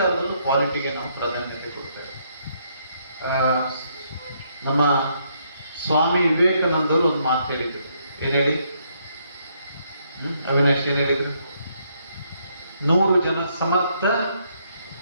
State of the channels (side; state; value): both; inverted; correlation -0.73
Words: ಕ್ವಾಲಿಟಿಗೆ ನಾವು ಪ್ರಾಧಾನ್ಯತೆ ಕೊಡ್ತೇವೆ. ನಮ್ಮ ಸ್ವಾಮಿ ವಿವೇಕಾನಂದರು ಒಂದು ಮಾತು ಹೇಳಿದ್ರು. ಏನ್ ಹೇಳಿ? ಅವಿನಾಶ್ ಏನ್ ಹೇಳಿದ್ರು? 100 ಜನ ಸಮರ್ಥ